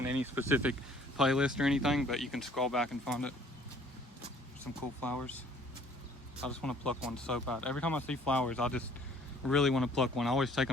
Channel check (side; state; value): both; normal; correlation 0.57